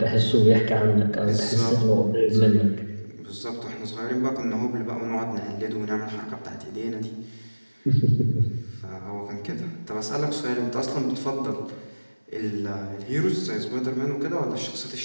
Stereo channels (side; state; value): both; inverted; correlation -1.00